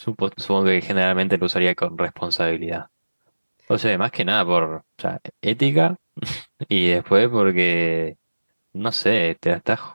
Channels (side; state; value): both; inverted; correlation -1.00